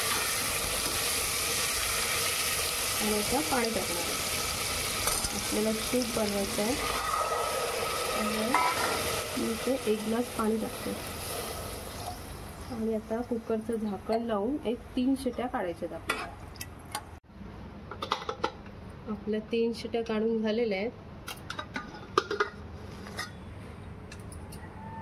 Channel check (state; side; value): identical; both; correlation 1.00